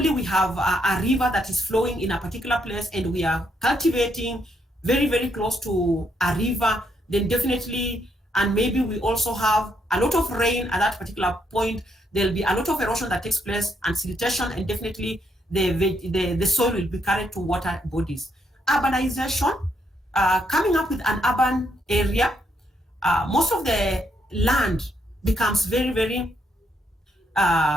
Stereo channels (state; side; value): normal; both; correlation 0.75